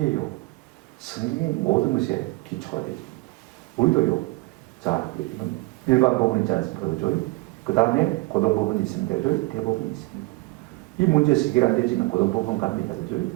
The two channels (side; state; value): left; quieter; 23.1 dB